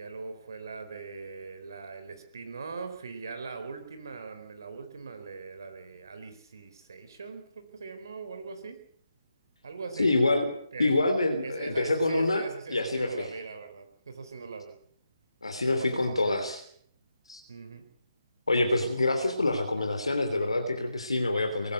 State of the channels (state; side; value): inverted; both; correlation -0.85